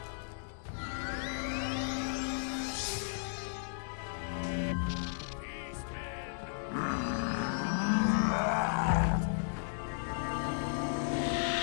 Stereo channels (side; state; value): right; silent; 55 dB below the other